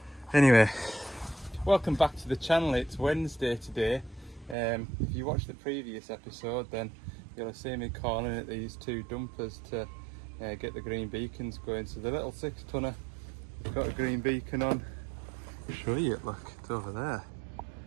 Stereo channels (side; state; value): left; drops out; at 4.5 s